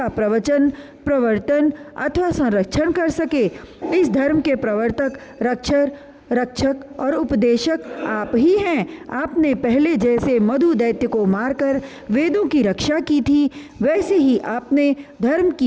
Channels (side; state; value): both; identical; correlation 1.00